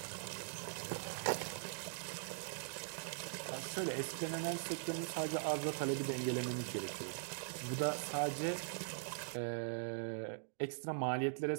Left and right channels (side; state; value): left; silent; digital silence